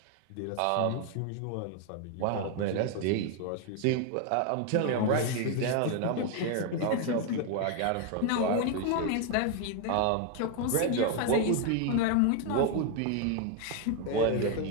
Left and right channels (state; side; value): different; both; correlation 0.01